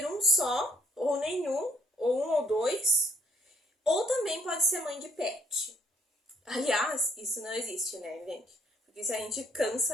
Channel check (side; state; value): both; normal; correlation 0.64